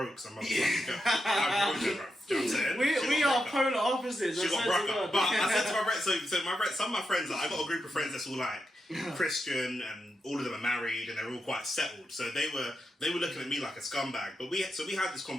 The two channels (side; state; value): both; normal; correlation 0.86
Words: some motherfucking girl. I broke her, bro. Do you know what I'm saying? We are polar opposites. She got broke up. But I said to my friends, some of my friends, like, I got a group of friends that's all like Christian and all of them are married and they're all quite settled. So they were looking at me like a scumbag. But we had this